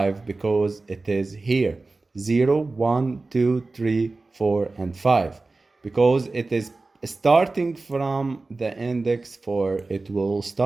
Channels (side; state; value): left; quieter; 3.5 dB